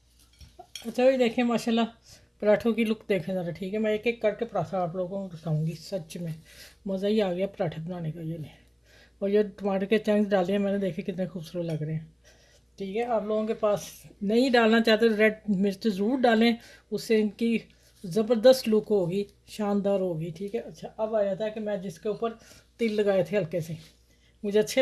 अच्छा ये देखिए माशाल्लाह, पराठों की लुक देखें ज़रा, ठीक है। मैं एक एक करके पराठा आप लोगों को दिखाऊंगी, सच में मज़ा ही आ गया पराठे बनाने का। ये नहीं, और ये टमाटर के चंक्स डाले हैं मैंने, देखे कितने खूबसूरत लग रहे हैं, ठीक है। आप लोगों के पास नहीं डालना चाहते तो रेड मिर्च ज़रूर डालें, उससे इनकी ज़बरदस्त लुक होगी, शानदार होगी, ठीक है। अच्छा, अब आया था कि मैं जिसके ऊपर तिल लगाए थे हल्के से, मुझे अच्छे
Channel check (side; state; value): both; identical; correlation 1.00